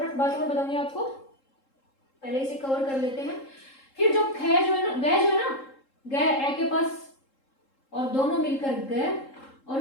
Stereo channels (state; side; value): late; right; 3.7 ms